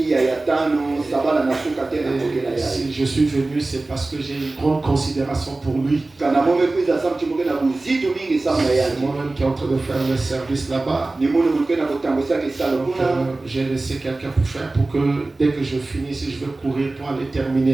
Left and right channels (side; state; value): left; quieter; 3.1 dB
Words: Si je suis venu, c'est parce que j'ai une grande considération pour lui. C'est moi-même qui est en train de faire le service là-bas. J'ai laissé quelqu'un pour faire pour que dès que je finis, si je veux courir pour aller